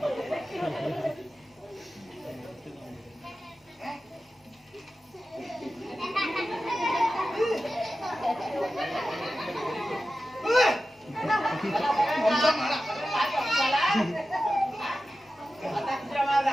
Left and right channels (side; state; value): both; normal; correlation 0.93